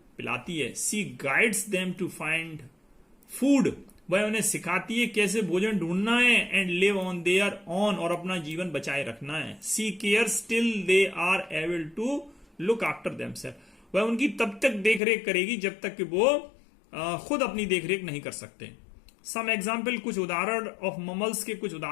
पिलाती है। She guides them to find food, वह उन्हें सिखाती है कैसे भोजन ढूंढना है। And live on their own, और अपना जीवन बचाए रखना है। She care still they are able to look after themself, वह उनकी तब तक देखरेख करेगी जब तक कि वो खुद अपनी देखरेख नहीं कर सकते। सम एग्जाम्पल, कुछ उदाहरण ऑफ ममल्स के कुछ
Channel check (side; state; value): right; drops out; at 15.0 s